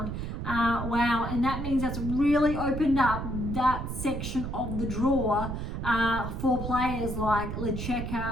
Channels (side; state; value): right; noise; rumble, 5 dB below the sound